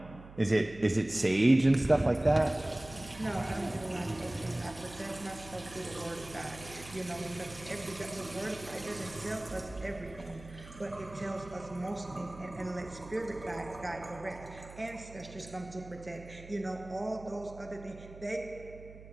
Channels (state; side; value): noise; right; hum, 16 dB below the sound